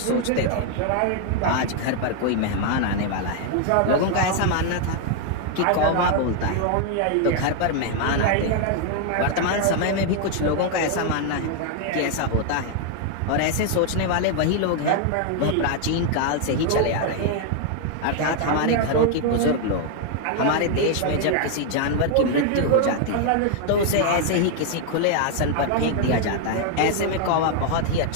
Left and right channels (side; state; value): both; different; correlation 0.00